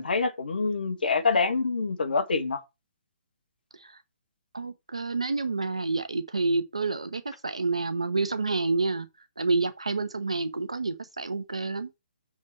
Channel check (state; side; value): inverted; both; correlation -0.75